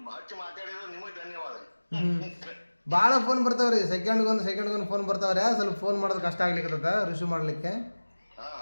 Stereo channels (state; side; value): inverted; both; correlation -1.00